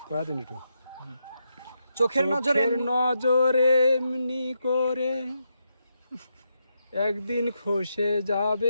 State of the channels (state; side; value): inverted; both; correlation -0.83